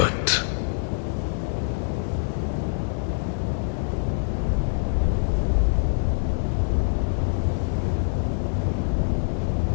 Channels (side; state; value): right; silent; digital silence